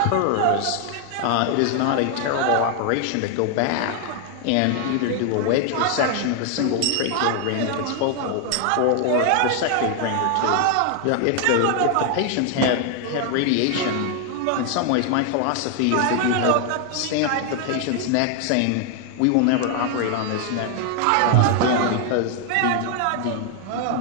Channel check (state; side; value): different; both; correlation 0.00